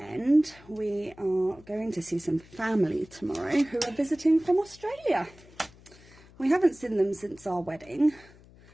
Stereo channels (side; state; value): left; noise; hum, 24 dB below the sound